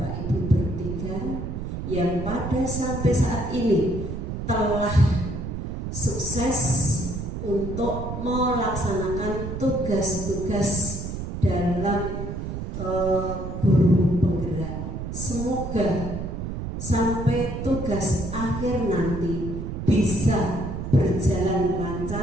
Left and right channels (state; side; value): noise; right; rumble, 5 dB below the sound